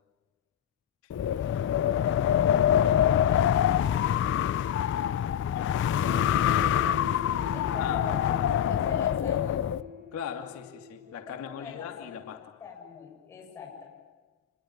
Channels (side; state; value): right; quieter; 9.7 dB